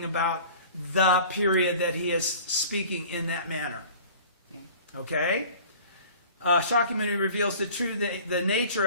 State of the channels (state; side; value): inverted; both; correlation -0.45